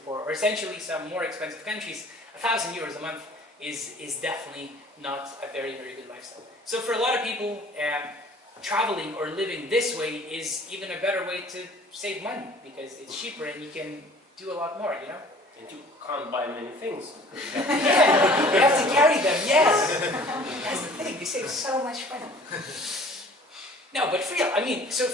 or essentially some more expensive countries, 1,000 euros a month is definitely not a very, very good lifestyle. So for a lot of people, traveling or living this way is even a better way to save money because it's cheaper and you can do a lot more, you know? And you can't buy many things. Yeah, you have to carry them, yes! That's the thing, you save so much money. No, but for real, I mean, so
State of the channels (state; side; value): normal; both; correlation 0.50